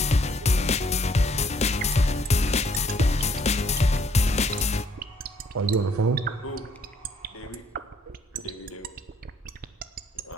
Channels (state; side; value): normal; both; correlation 0.66